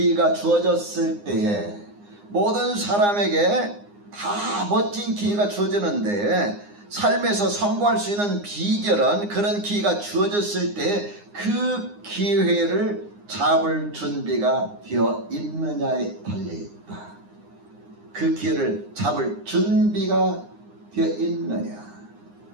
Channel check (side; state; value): left; late; 9.7 ms